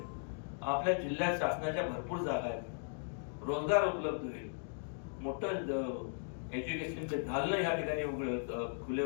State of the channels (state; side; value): silent; right; digital silence